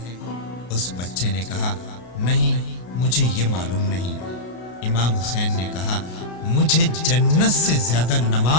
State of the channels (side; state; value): right; late; 33 ms